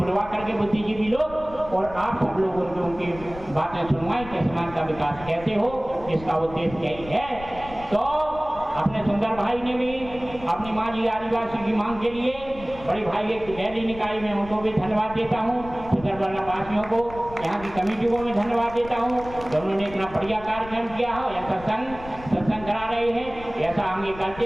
करके बुद्धिजीवी लोग और आप सब लोगों को उनकी बातें सुनवाएं कि समाज का विकास कैसे हो, इसका उद्देश्य यही है। तो अपने सुंदर भाई ने भी अपनी माँ जी आदिवासी की मांग के लिए बड़ी भाई एक गैली निकाय में उनको भी धन्यवाद देता हूँ, सुंदरबला वासियों को, यहाँ की कमेटी को मैं धन्यवाद देता हूँ जो उन्होंने इतना बढ़िया कार्यक्रम किया हो। ऐसा सत्संग करा रहे हैं, ऐसा आगे करते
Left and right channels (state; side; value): noise; left; rumble, 16 dB below the sound